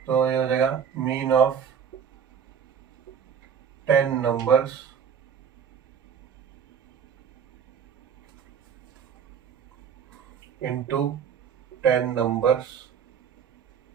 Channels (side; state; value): left; quieter; 7.6 dB